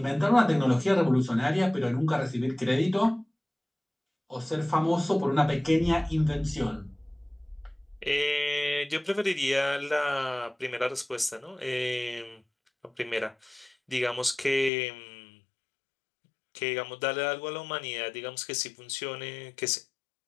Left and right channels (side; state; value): right; drops out; at 14.7 s